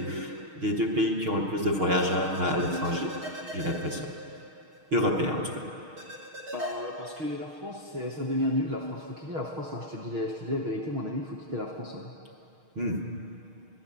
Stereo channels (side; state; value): left; late; 6.4 ms